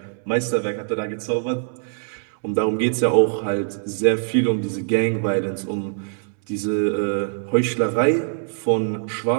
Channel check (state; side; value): silent; left; 64 dB below the other